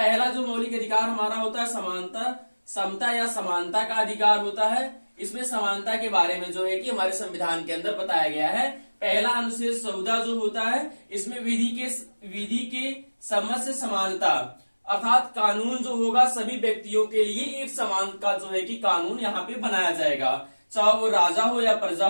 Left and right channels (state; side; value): inverted; both; correlation -1.00